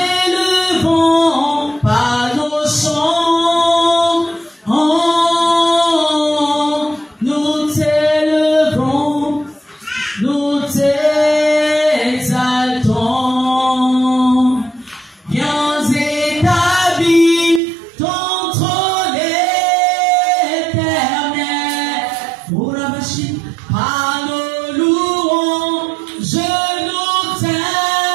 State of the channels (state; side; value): drops out; left; at 17.6 s